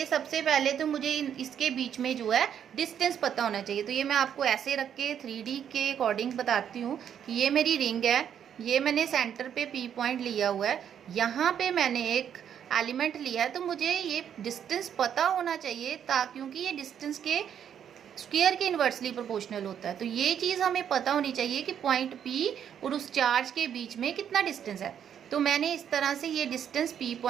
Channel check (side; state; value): left; quieter; 8.9 dB